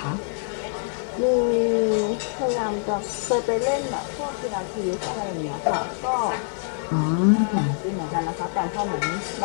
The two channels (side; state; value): right; silent; digital silence